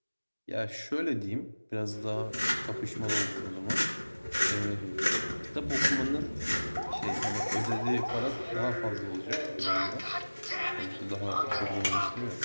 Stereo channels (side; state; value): both; inverted; correlation -1.00